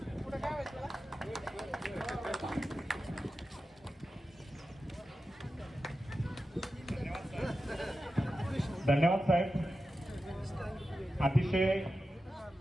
पुढे काय व्हायचं? धन्यवाद साहेब. अतिशय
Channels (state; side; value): normal; both; correlation 0.92